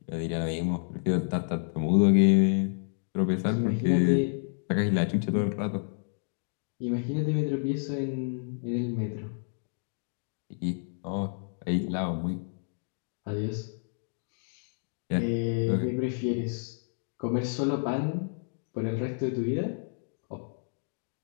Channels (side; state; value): right; silent; digital silence